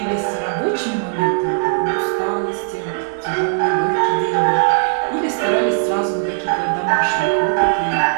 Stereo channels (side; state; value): left; silent; digital silence